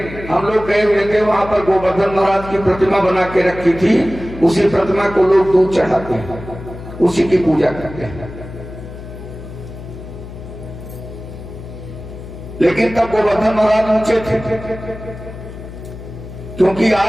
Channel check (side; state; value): left; noise; hum, 13 dB below the sound